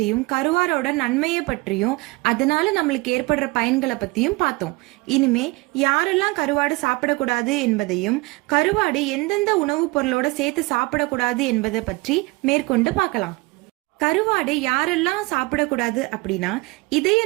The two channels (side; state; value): left; quieter; 24.1 dB